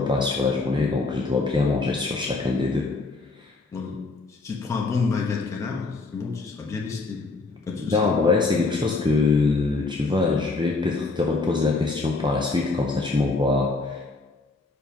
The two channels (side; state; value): right; quieter; 3.5 dB